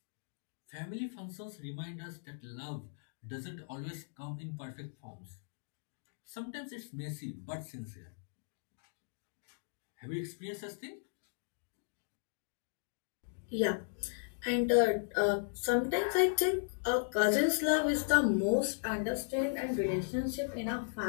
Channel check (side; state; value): right; silent; digital silence